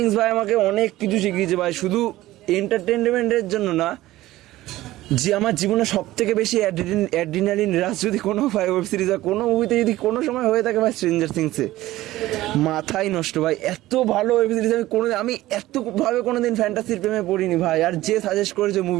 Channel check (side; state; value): left; quieter; 16.4 dB